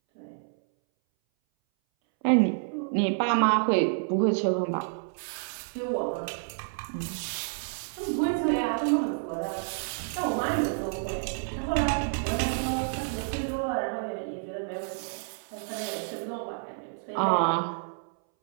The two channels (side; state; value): left; silent; 59 dB below the other